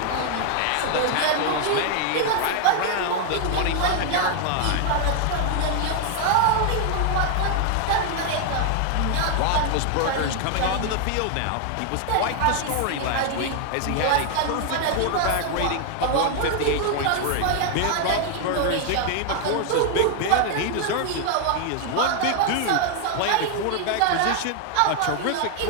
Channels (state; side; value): different; both; correlation 0.00